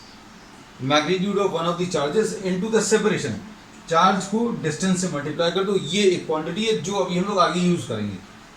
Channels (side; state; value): both; identical; correlation 1.00